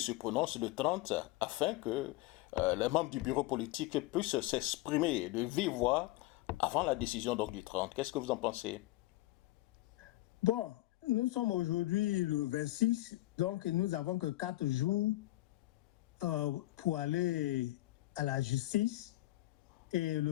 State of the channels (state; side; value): quieter; right; 18.0 dB